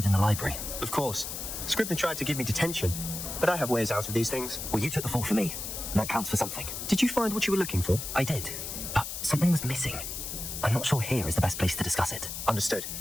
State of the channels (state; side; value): noise; left; hiss, 6 dB below the sound